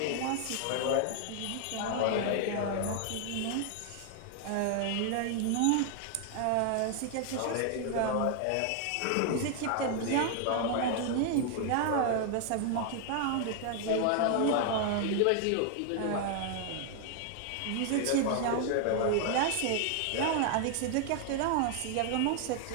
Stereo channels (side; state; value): both; different; correlation 0.00